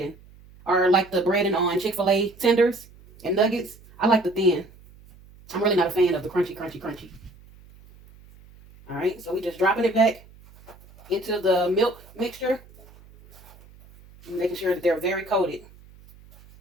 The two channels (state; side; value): noise; right; hum, 24 dB below the sound